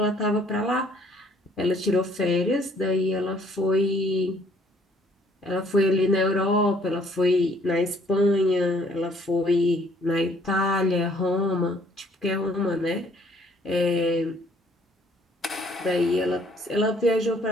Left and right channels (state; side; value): normal; both; correlation 0.61